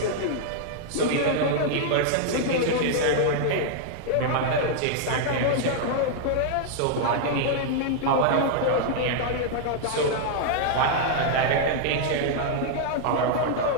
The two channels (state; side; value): different; both; correlation -0.01